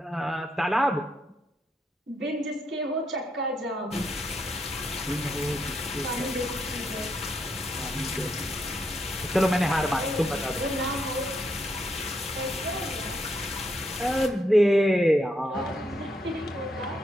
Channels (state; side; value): normal; both; correlation 0.78